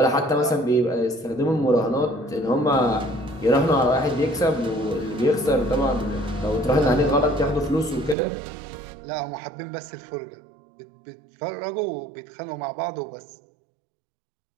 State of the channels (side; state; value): left; drops out; at 8.2 s